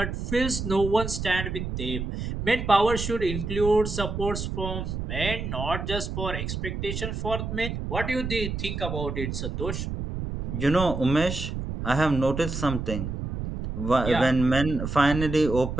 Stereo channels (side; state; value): right; noise; rumble, 4 dB below the sound